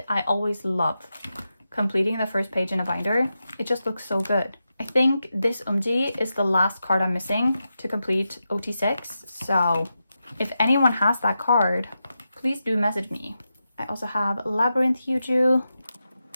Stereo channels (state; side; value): inverted; both; correlation -0.89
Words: I always love completing the first page in a binder. It just looks so good. I think this eunbi is the last card I'm missing to complete OT6. So if anyone has that card, please do message me. I also have Labyrinth Yuju.